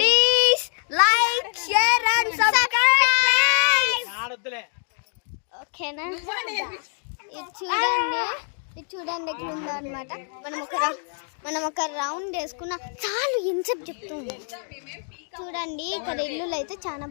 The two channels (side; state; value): right; silent; 59 dB below the other